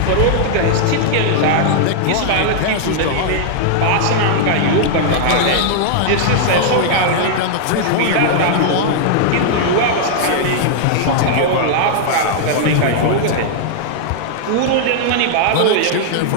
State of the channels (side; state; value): both; different; correlation -0.01